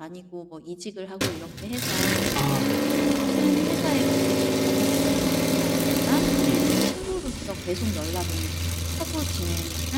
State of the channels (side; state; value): both; identical; correlation 1.00